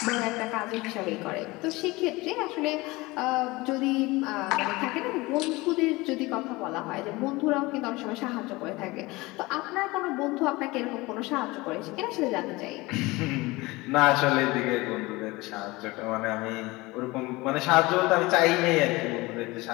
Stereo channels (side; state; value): right; quieter; 22.0 dB